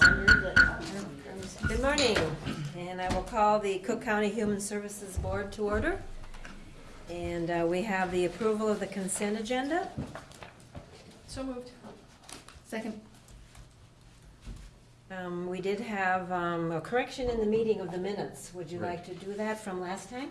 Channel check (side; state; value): both; identical; correlation 1.00